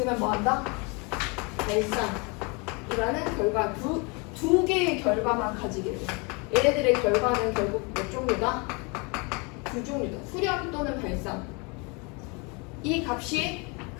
뭐 한다? 발산이라는 결과 두 개의 결과만 가지게 돼. 얘네들의 결과는 결국 몇 종류다? 두 종류다. 수렴 또는 발산. 이 값이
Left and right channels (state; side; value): quieter; right; 30.6 dB